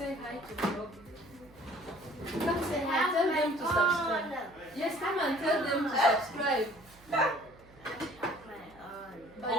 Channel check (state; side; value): noise; right; hum, 25 dB below the sound